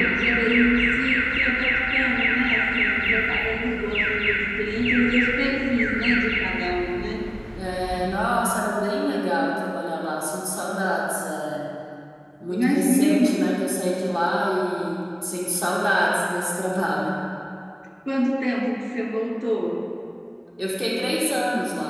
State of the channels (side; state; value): both; identical; correlation 1.00